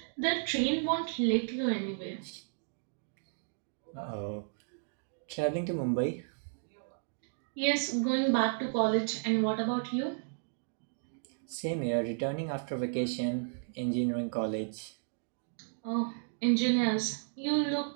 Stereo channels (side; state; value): left; silent; digital silence